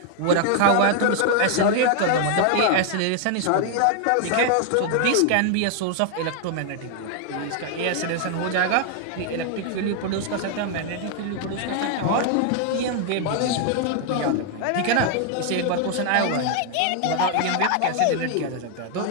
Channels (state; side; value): different; both; correlation 0.00